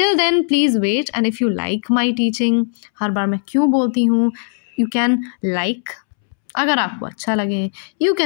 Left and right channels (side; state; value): right; silent; 67 dB below the other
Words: then please wait. And if you like my teaching, हर बार मैं क्यों बोलती हूँ, यू कैन लाइक अगर आपको अच्छा लगे, यू